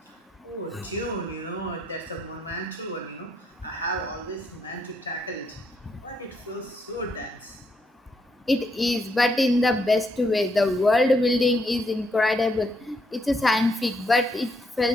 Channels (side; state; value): both; normal; correlation 0.75